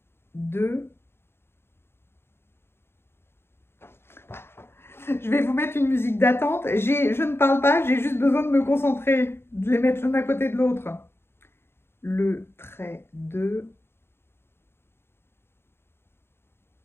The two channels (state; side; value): late; right; 0.11 ms